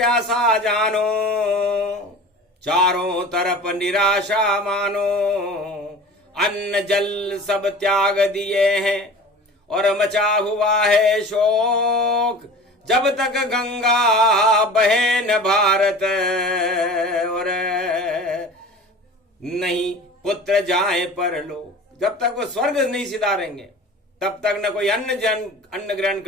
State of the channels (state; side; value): normal; both; correlation 0.39